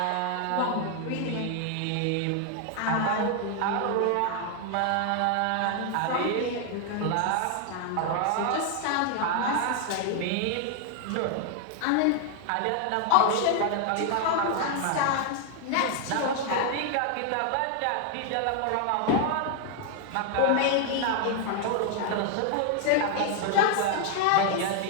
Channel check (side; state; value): both; different; correlation 0.00